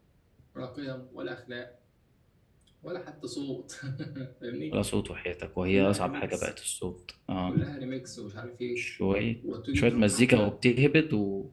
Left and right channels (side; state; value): both; identical; correlation 1.00